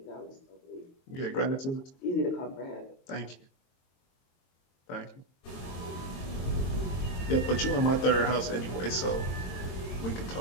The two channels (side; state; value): right; late; 22 ms